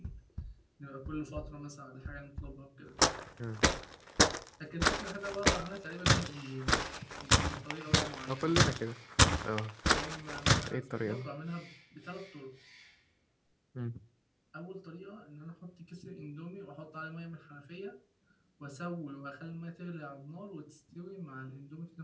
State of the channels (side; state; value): both; identical; correlation 1.00